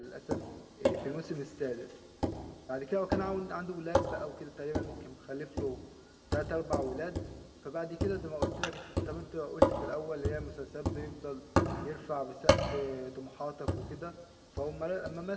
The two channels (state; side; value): identical; both; correlation 1.00